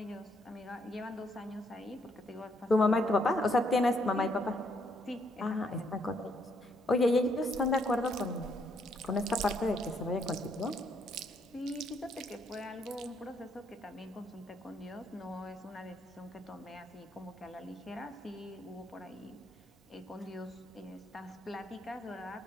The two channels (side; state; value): both; normal; correlation 0.72